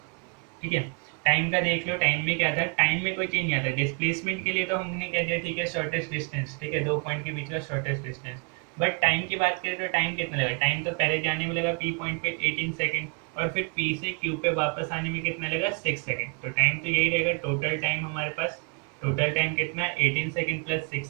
ठीक है। टाइम का देख लो, टाइम में क्या था, टाइम में कोई चेंज नहीं आता। डिस्प्लेसमेंट के लिए तो हमने कह दिया ठीक है शॉर्टेस्ट डिस्टेंस, ठीक है, दो पॉइंट के बीच का शॉर्टेस्ट डिस्टेंस। बट टाइम की बात करें तो टाइम कितना लगा, टाइम तो पहले जाने में लगा P पॉइंट पे 18 सेकंड, और फिर P से Q पे वापस आने में कितना लगा 6 सेकंड। तो टाइम तो यही रहेगा, टोटल टाइम हमारे पास, टोटल टाइम कितना 18 सेकंड प्लस 6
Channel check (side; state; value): left; quieter; 36.8 dB